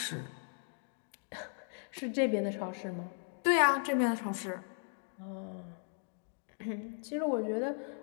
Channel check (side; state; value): right; silent; 53 dB below the other